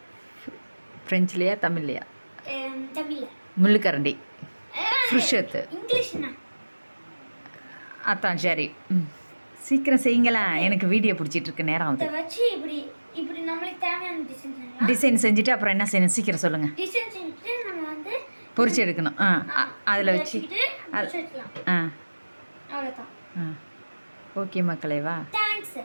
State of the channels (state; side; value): inverted; both; correlation -1.00